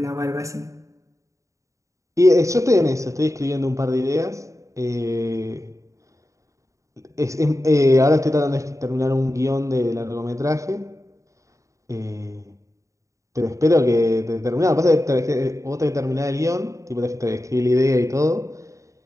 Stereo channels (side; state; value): left; late; 0.15 ms